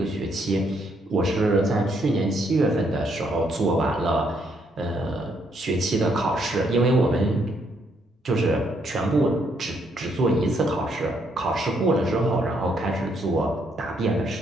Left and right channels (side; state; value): both; normal; correlation 0.73